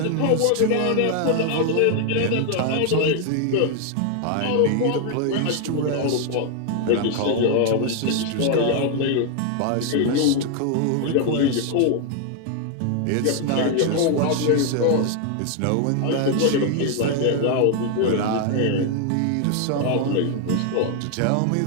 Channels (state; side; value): different; both; correlation 0.00